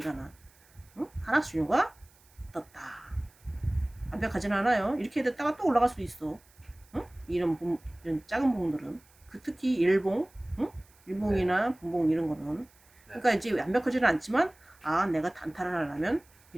하락 신호가 떴다. 완벽하진 않아요. 이렇게 됐다가 또 올라갈 수도 있어. 이런 작은 봉들은 특히 일봉, 일봉이나 분봉 이런 거는 그러니까 이제 완벽하지는 않지만 내가 단타를 하려면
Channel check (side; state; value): right; noise; hiss, 29 dB below the sound